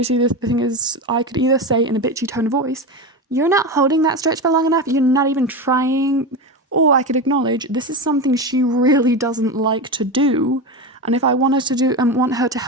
the thing is, I could either say in a bitchy tone of voice, you're not holding that stretch for long enough, you're not even trying, or I could acknowledge this is something she really doesn't like to do, and if I wanted to do and want her to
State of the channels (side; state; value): both; normal; correlation 0.20